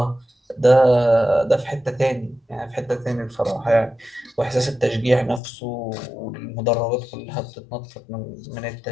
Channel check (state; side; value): drops out; right; at 5.4 s